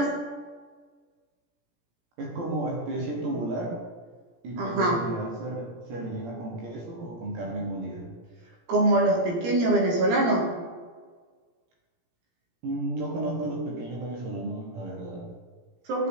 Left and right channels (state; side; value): late; left; 17 ms